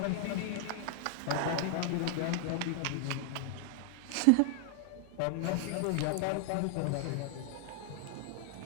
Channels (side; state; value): both; different; correlation 0.00